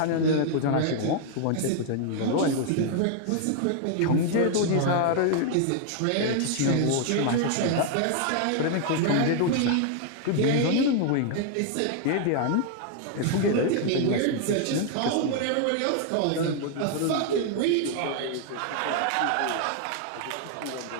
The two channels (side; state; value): both; different; correlation 0.00